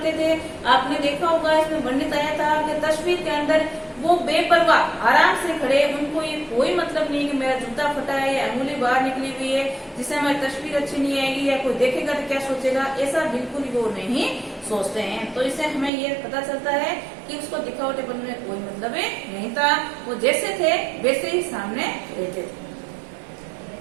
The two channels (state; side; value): drops out; left; at 15.9 s